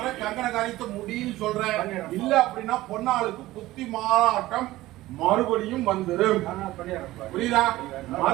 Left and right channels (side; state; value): left; quieter; 16.9 dB